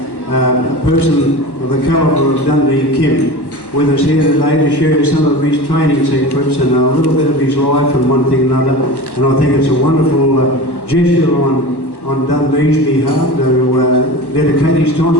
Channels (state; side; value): late; right; 1.1 ms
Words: person of the calibre of Dundee Kim with us here today to share some of his training secrets and a little bit of his life and one thing and another. And I think it's a wonderful gesture on Dundee's behalf to dedicate his time